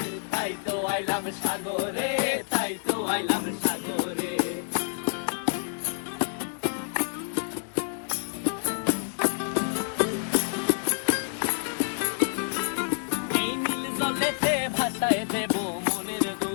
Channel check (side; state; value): right; silent; digital silence